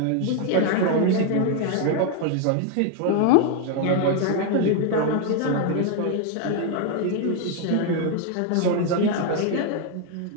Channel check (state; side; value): different; both; correlation 0.01